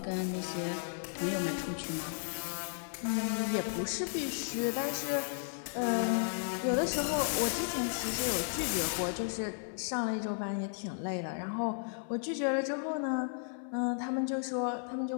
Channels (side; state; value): right; silent; 55 dB below the other